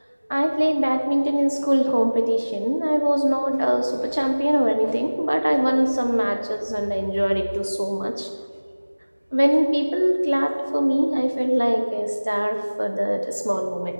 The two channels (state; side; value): inverted; both; correlation -1.00